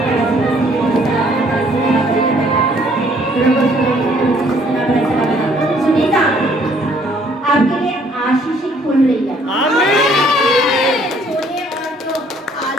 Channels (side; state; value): both; normal; correlation 0.62